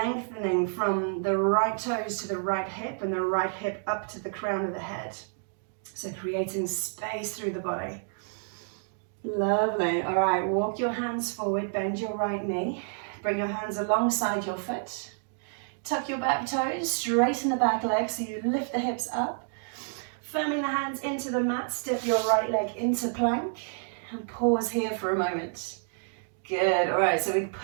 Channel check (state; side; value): silent; left; digital silence